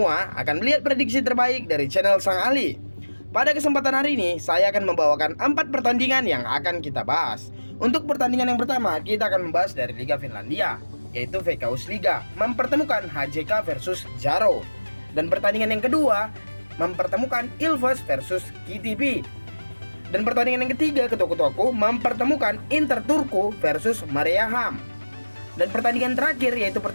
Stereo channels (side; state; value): both; inverted; correlation -1.00